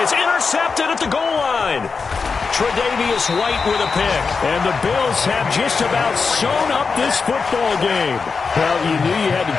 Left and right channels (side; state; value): right; quieter; 4.9 dB